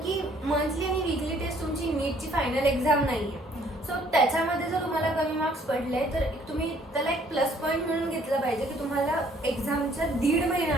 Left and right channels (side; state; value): both; normal; correlation 0.61